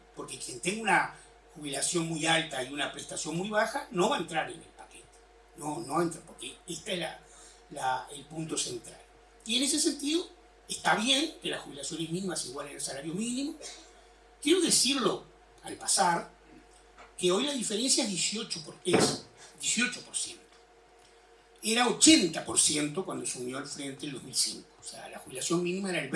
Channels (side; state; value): both; identical; correlation 1.00